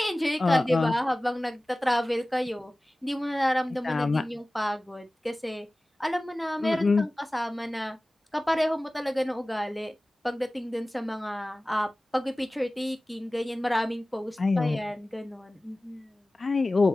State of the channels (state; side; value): normal; both; correlation 0.97